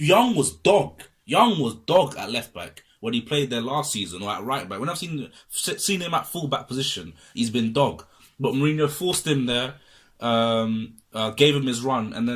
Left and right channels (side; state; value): both; identical; correlation 1.00